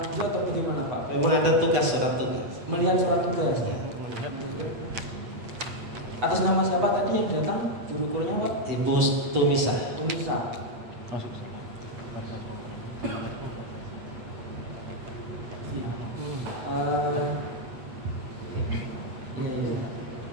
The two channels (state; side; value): late; left; 8.2 ms